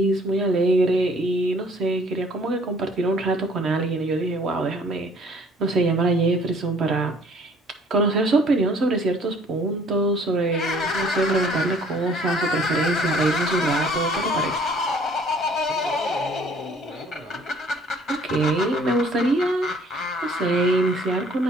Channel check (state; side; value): normal; both; correlation 0.57